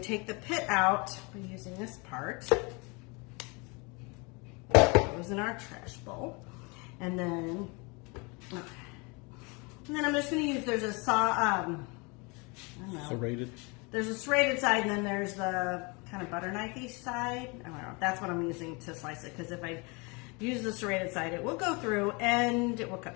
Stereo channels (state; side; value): quieter; right; 29.2 dB